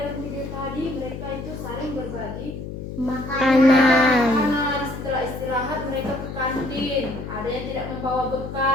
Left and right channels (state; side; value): noise; left; hum, 8 dB below the sound